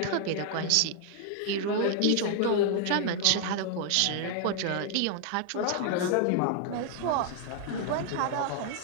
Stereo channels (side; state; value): both; different; correlation 0.00